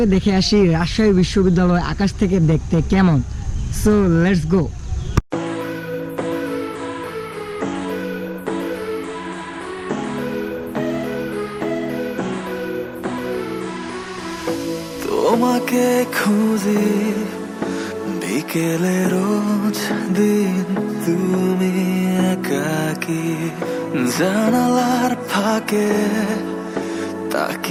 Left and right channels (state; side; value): identical; both; correlation 1.00